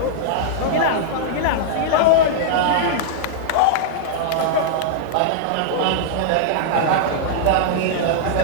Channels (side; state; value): both; different; correlation -0.02